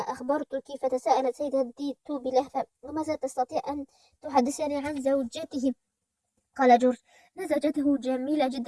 أخبرتك. فتساءلت سيدة ديتو بلهفة: وماذا تستطيع أن تحدثني عن زوجته؟ قال جورج: إن زوجته جميلة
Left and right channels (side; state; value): both; identical; correlation 1.00